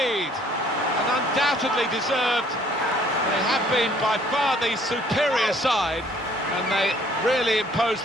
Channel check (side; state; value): both; normal; correlation 0.59